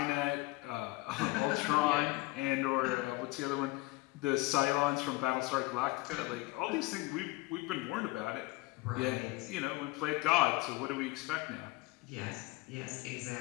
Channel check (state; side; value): quieter; right; 21.0 dB